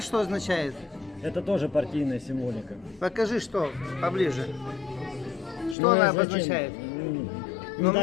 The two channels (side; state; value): right; drops out; at 5.8 s